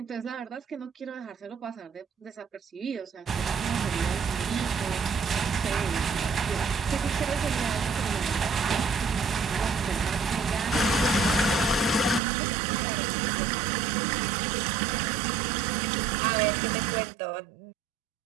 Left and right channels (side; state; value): left; drops out; at 12.2 s